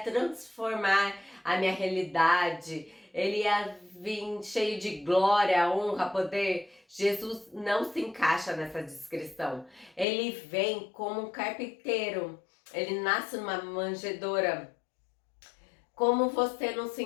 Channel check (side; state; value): right; drops out; at 10.1 s